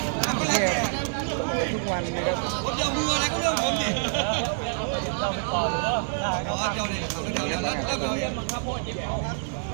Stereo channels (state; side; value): silent; left; 60 dB below the other